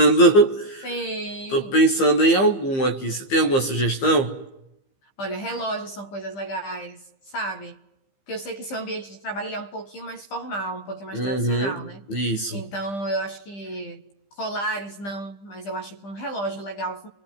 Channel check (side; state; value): right; late; 15 ms